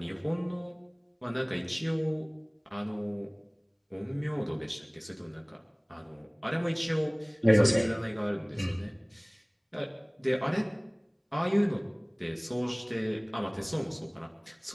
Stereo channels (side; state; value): both; identical; correlation 1.00